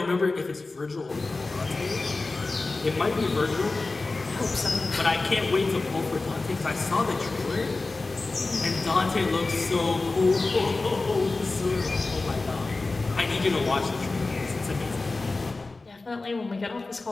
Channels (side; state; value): right; quieter; 3.5 dB